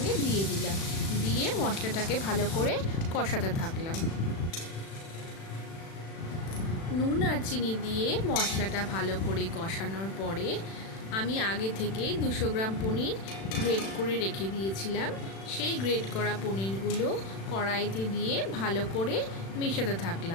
দিয়ে দিলাম। দিয়ে মশলাটাকে ভালো করে কষাতে থাকলাম। নুন আর চিনি দিয়ে মশলাটা ভালো করে কষানোর পরে আমি আগে থেকেই 200 গ্রাম পনির গ্রেট করে রেখে দিয়েছিলাম। সেই গ্রেট করা পনিরগুলো কড়াইতে দিয়ে ভালো করে মেশাতে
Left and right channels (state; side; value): late; right; 36 ms